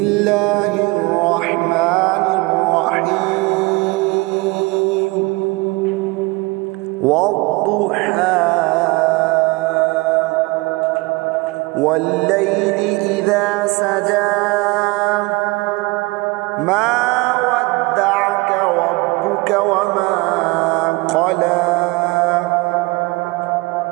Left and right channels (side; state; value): left; quieter; 24.9 dB